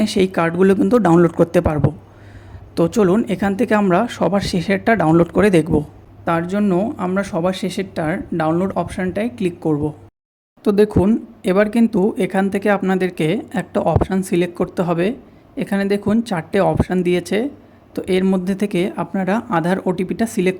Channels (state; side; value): identical; both; correlation 1.00